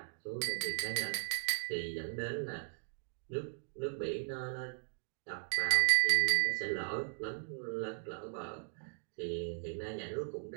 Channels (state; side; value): silent; left; digital silence